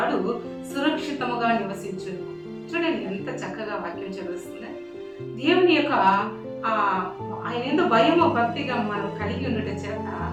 సురక్షితముగా నివసించును. చూడండి ఎంత చక్కగా వాక్యం చదువుతుంది. దేవుని యొక్క ఆయన ఏదో భయము భక్తిగా మనం కలిగి ఉండటం చేత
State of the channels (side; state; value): both; identical; correlation 1.00